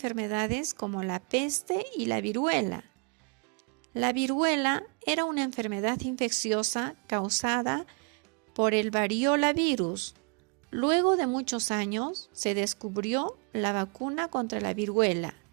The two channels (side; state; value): left; quieter; 37.4 dB